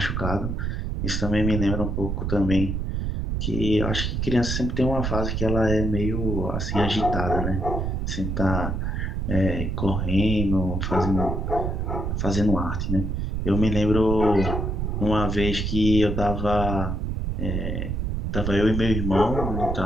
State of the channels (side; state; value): right; noise; rumble, 1 dB below the sound